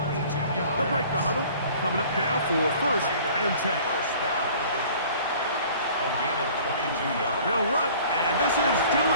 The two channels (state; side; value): inverted; both; correlation -0.49